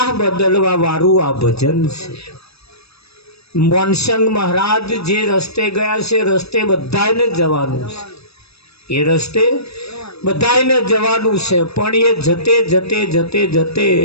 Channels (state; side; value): late; right; 0.78 ms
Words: બદલવા વાળું આ ભજન છે. મોનસંગ મહારાજ જે રસ્તે ગયા છે, રસ્તે બધાને જવાનું છે. એ રસ્તે બધાને જવાનું છે, પણ એ જતે જતે જતે જતે